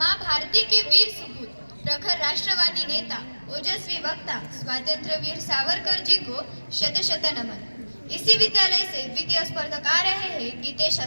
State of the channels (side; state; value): both; inverted; correlation -1.00